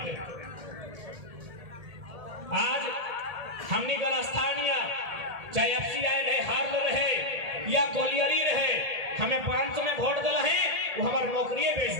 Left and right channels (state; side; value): late; left; 1.8 ms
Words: आज हमनी का स्थानीय चाहे एफसीआई रहे हार्ल रहे या कोलियरी रहे हमें 500 में वोट दिला है वो हमार नौकरी बेच